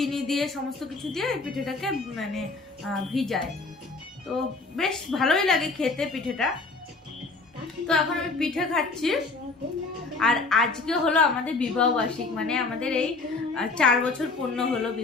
দিয়ে, সমস্ত কিছু দিয়ে এই পিঠেটাকে মানে ভিজায়। তো বেশ ভালোই লাগে খেতে পিঠেটা। তো এখন আমি পিঠে খাচ্ছি। আর আজকে হলো আমাদের বিবাহবার্ষিক, মানে আমাদের এই 4 বছর পূর্ণ হলো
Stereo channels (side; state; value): right; quieter; 3.8 dB